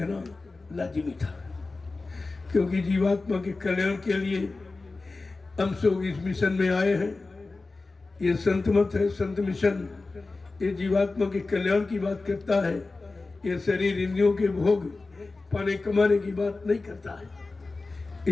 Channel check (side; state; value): right; quieter; 3.6 dB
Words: लाजिमी था, क्योंकि जीवात्मा के कल्याण के लिए हम सब इस मिशन में आए हैं। ये संत मत है, संत मिशन, ये जीवात्मा के कल्याण की बात करता है। ये शरीर इंद्रियों के भोग पाने कमाने की बात नहीं करता है।